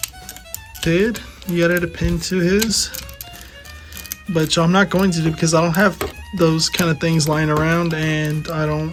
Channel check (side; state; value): both; identical; correlation 1.00